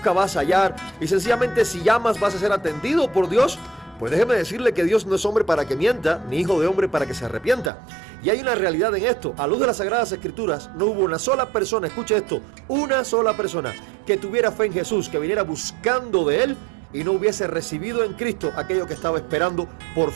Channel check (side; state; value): left; drops out; at 7.7 s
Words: vas a hallar, y sencillamente si llamas vas a ser atendido por Dios. Pues déjeme decirle que Dios no es hombre para que mienta, ni hijo de hombre para que se arrepienta. Y hay una realidad en esto. A luz de las Sagradas Escrituras, no hubo una sola persona, escuche esto, una sola persona que tuviera fe en Jesús, que viniera buscando de Él y no hubiese recibido en Cristo aquello que estaba esperando por